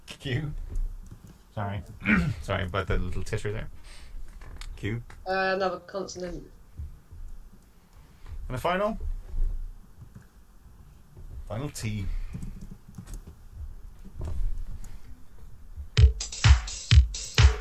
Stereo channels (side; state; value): both; identical; correlation 1.00